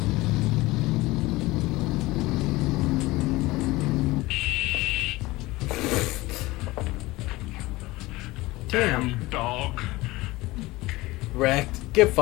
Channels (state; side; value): quieter; right; 20.1 dB